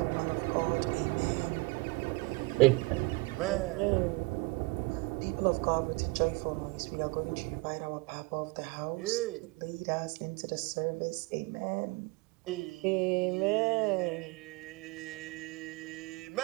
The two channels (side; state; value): left; quieter; 25.5 dB